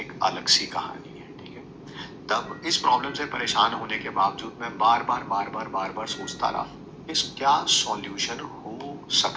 अलग सी कहानी है। ठीक है, तब इस प्रॉब्लम से परेशान होने के बावजूद मैं बार बार सोचता रहा इस क्या सॉल्यूशन हो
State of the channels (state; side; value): identical; both; correlation 1.00